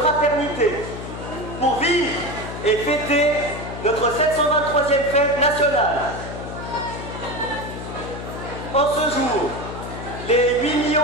fraternité, pour vivre et fêter notre 723e fête nationale. En ce jour, les 8 millions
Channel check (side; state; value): left; noise; hum, 9 dB below the sound